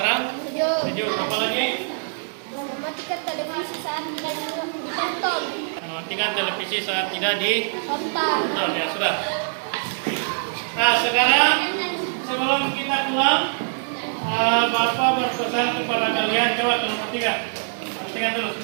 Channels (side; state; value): left; silent; digital silence